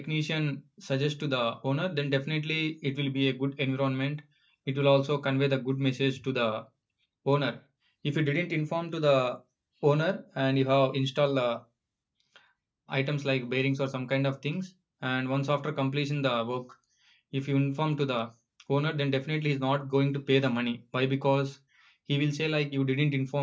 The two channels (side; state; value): both; identical; correlation 1.00